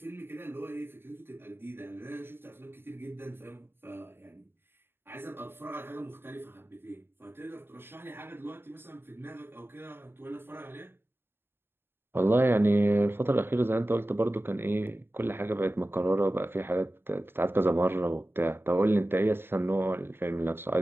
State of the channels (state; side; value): late; left; 0.11 ms